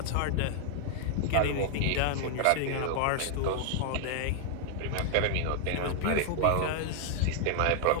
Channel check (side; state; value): both; different; correlation 0.00